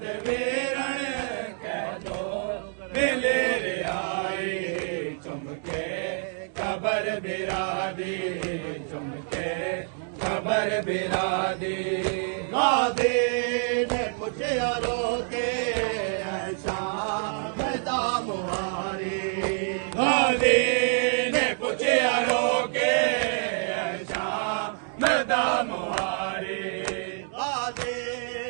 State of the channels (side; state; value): left; silent; 60 dB below the other